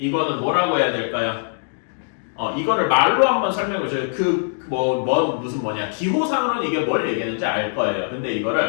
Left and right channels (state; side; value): silent; right; digital silence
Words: 뭐라고 해야 될까요? 이거를 말로 한번 설명해 줘요. 무슨 기호상으로는 이게 뭘 얘기하는지 알 거예요. 근데